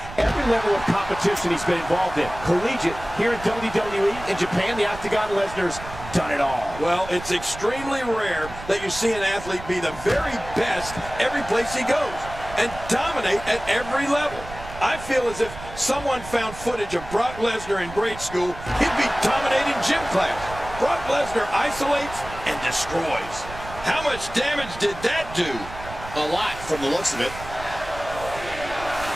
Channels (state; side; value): noise; right; rumble, 13 dB below the sound